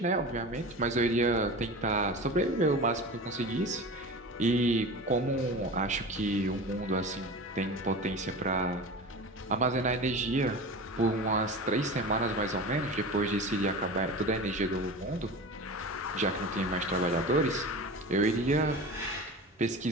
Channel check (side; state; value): both; normal; correlation 0.31